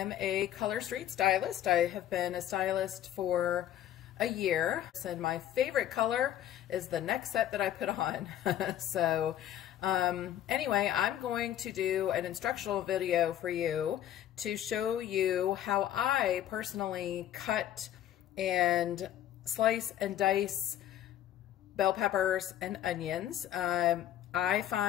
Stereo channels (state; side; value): quieter; right; 11.7 dB